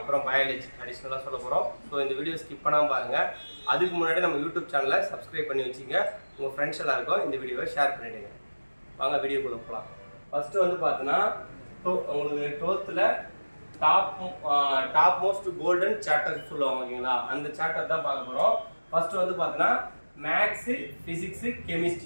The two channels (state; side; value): inverted; both; correlation -1.00